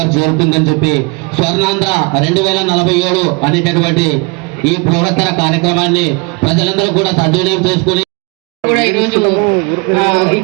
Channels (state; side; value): quieter; left; 29.8 dB